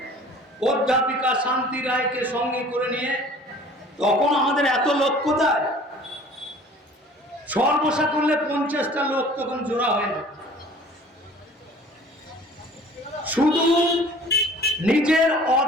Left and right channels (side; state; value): both; normal; correlation 0.48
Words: অধ্যাপিকা শান্তি রায়কে সঙ্গে করে নিয়ে, তখন আমাদের এত লোক কোথায়, সর্বসা করলে 50টা লোক তখন জোড়া হয় না। শুধু নিজের